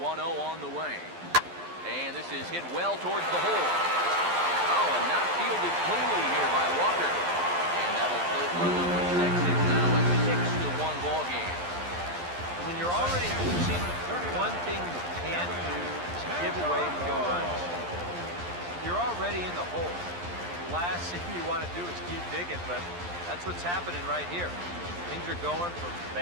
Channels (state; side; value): late; left; 11 ms